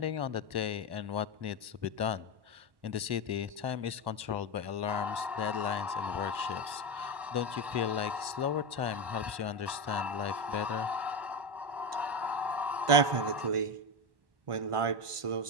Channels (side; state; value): left; late; 1.1 ms